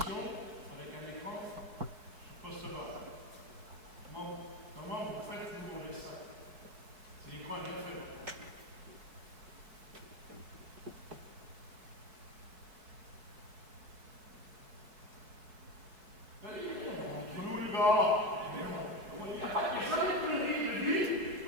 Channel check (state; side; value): late; left; 4.7 ms